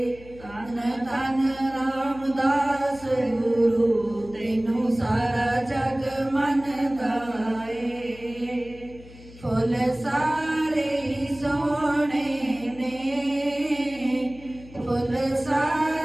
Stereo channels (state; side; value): noise; left; hum, 20 dB below the sound